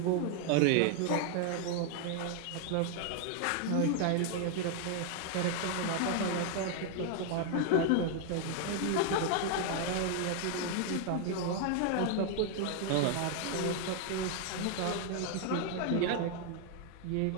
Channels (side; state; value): both; different; correlation 0.00